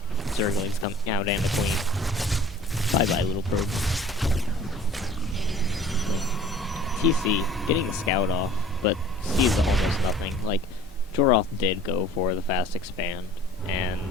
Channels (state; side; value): normal; both; correlation 0.48